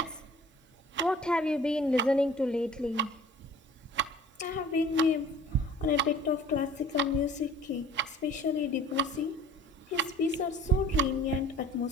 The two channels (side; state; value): both; normal; correlation 0.48